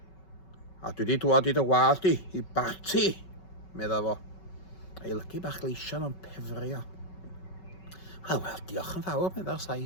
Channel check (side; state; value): right; late; 5.3 ms